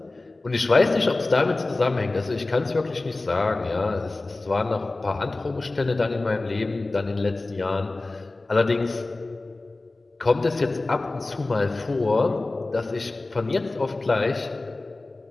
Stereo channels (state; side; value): quieter; right; 3.1 dB